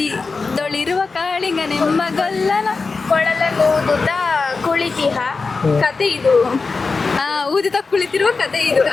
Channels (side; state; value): right; quieter; 4.3 dB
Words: ಕಾಳಿಂಗ ನೆಂಬಗಲ್ಲನ ಕೊಳಲೂದುತ್ತ ಕುಳಿತಿಹ ಕತೆ ಇದು. ಊದಿತ ಕುಳಿತಿರುವ ಕತೆ ಇದು.